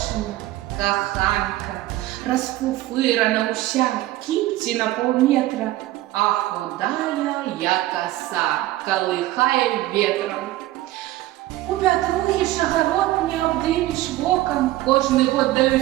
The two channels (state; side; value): quieter; left; 16.1 dB